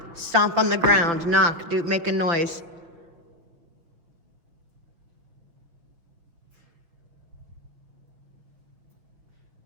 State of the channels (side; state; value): left; late; 5.9 ms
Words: Stomp on the ground, knock, make a noise.